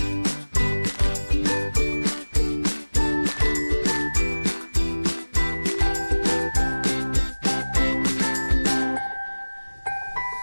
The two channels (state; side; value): inverted; both; correlation -1.00